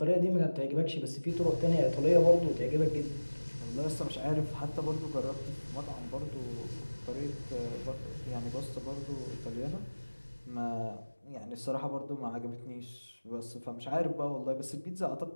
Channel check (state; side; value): inverted; both; correlation -1.00